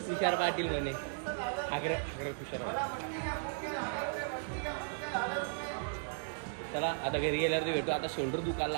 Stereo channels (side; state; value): left; silent; digital silence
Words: तुषार पाटील म्हणे. आग्रह तुषार. चला आता घरी गेल्यावरती भेटू. आता शोल्डर दुखायला